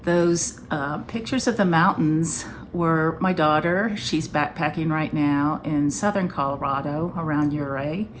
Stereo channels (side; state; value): both; identical; correlation 1.00